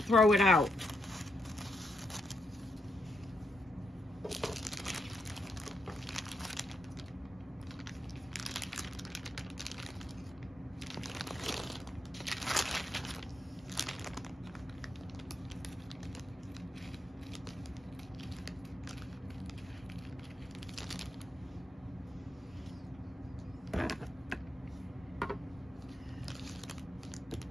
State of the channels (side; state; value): both; normal; correlation 0.82